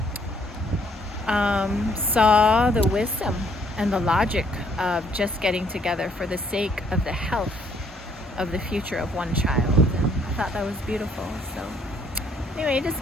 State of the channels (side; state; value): both; normal; correlation 0.65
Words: saw the wisdom and the logic of just getting together for the sake of the health of the future of one child. And I thought that was beautiful. So anyway, I just